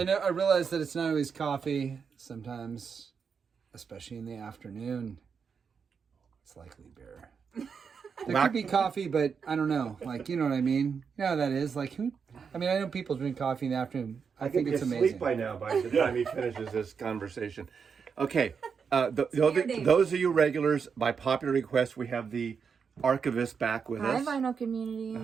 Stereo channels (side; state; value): left; quieter; 6.1 dB